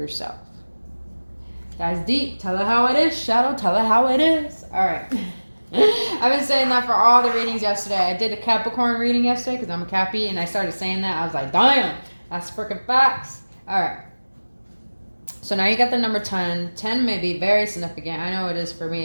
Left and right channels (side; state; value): both; inverted; correlation -1.00